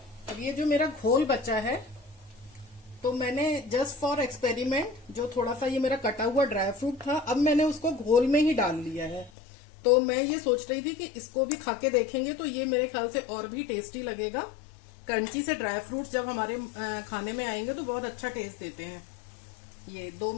अब ये जो मेरा घोल बचा है, तो मैंने जस्ट फॉर एक्सपेरिमेंट जो थोड़ा सा ये मेरा कटा हुआ ड्राई फ्रूट था, अब मैंने उसको घोल में ही डाल लिया है। तो मैं ये सोच रही थी कि इसको भी खा के देखेंगे तो ये मेरे ख्याल से और भी टेस्टी लगेगा। क्रंची से ड्राई फ्रूट्स जब हमारे खाने में आएंगे तो बहुत अच्छा टेस्ट देते हैं। ये 2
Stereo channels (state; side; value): drops out; right; at 9.3 s